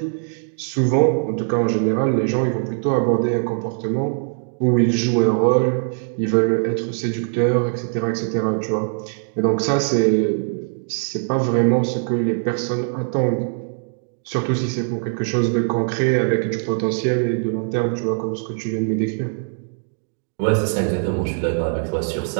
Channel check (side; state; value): left; silent; digital silence